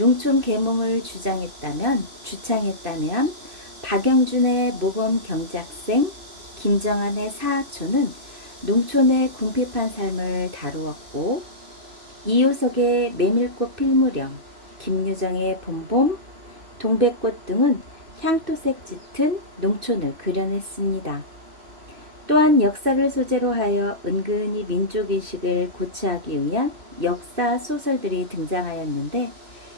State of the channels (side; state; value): left; late; 3.0 ms